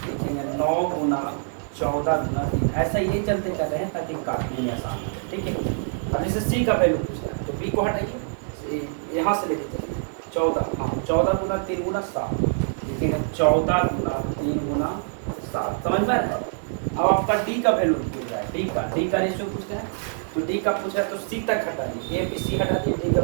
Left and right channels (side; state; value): left; silent; digital silence